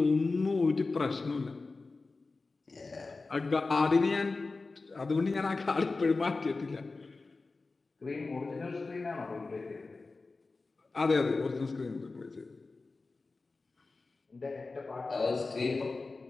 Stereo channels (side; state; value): right; quieter; 3.7 dB